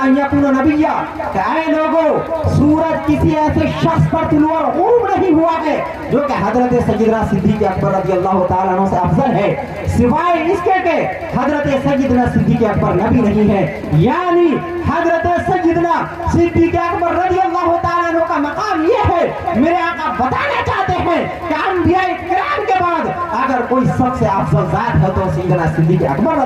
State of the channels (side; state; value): both; identical; correlation 1.00